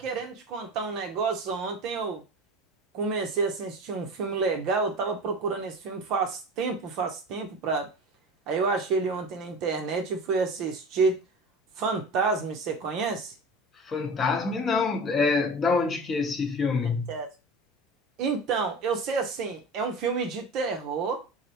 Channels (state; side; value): normal; both; correlation 0.33